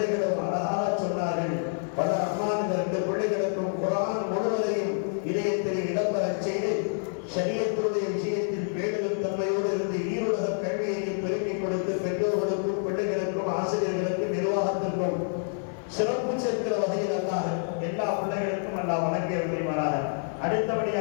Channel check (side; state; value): right; silent; digital silence